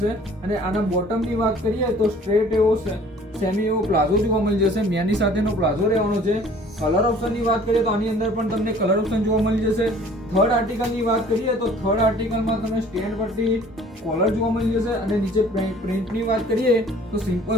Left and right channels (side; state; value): both; normal; correlation 0.52